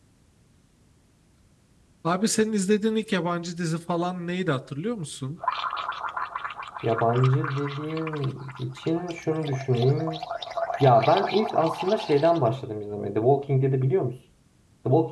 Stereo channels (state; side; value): identical; both; correlation 1.00